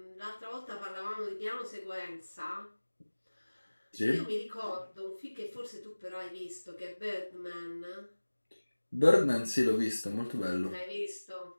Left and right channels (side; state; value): both; inverted; correlation -1.00